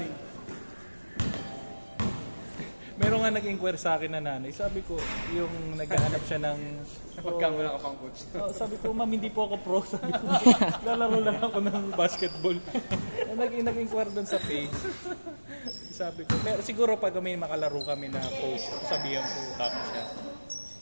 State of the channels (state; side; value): inverted; both; correlation -1.00